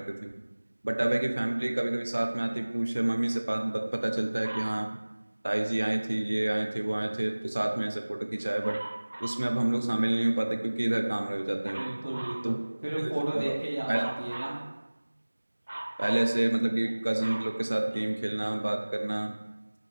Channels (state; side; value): inverted; both; correlation -1.00